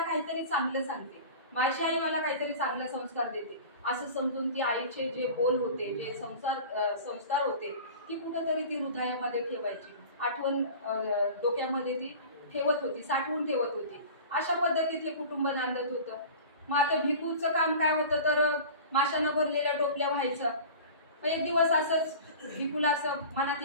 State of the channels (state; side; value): inverted; both; correlation -0.37